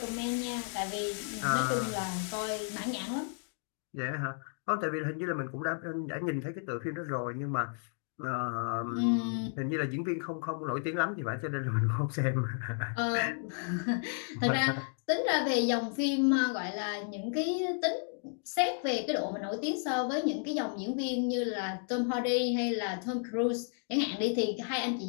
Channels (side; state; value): right; silent; 56 dB below the other